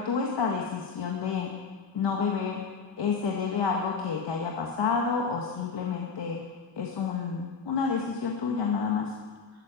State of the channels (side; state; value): right; quieter; 5.3 dB